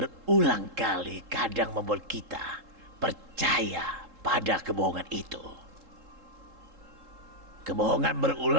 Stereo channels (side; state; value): left; late; 3.7 ms